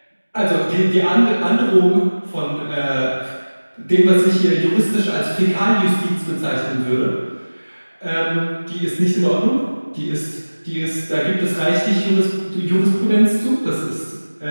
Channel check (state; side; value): inverted; both; correlation -1.00